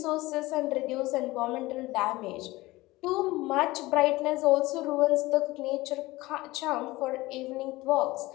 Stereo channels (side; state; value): right; quieter; 19.7 dB